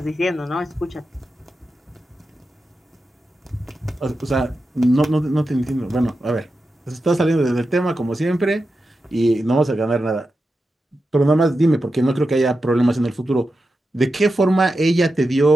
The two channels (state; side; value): normal; both; correlation 0.90